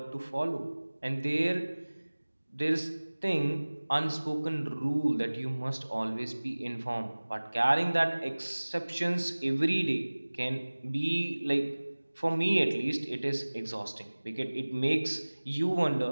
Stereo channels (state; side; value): inverted; both; correlation -1.00